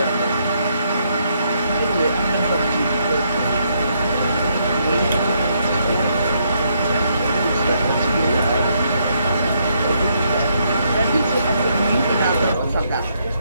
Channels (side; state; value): both; inverted; correlation -0.74